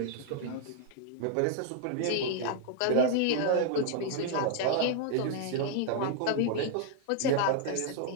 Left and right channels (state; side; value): different; both; correlation -0.01